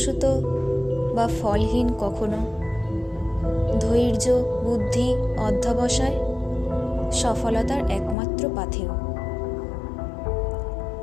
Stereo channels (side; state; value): right; drops out; at 8.2 s